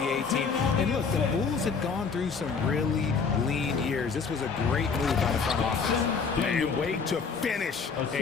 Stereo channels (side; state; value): right; quieter; 5.4 dB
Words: team. And look, the Bulls had gone through some really lean years. This was a great move by the front office. And wait to finish